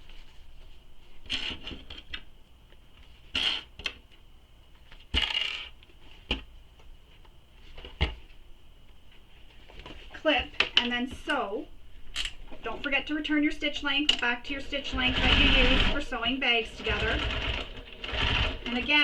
Clip, and then sew. Don't forget to return your stitch length back to your stitch length that you use for sewing bags together. And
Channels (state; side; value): identical; both; correlation 1.00